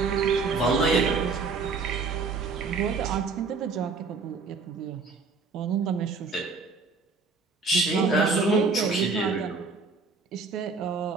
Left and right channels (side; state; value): left; quieter; 4.3 dB